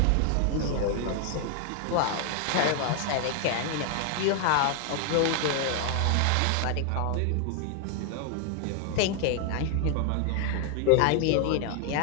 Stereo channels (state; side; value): different; both; correlation 0.00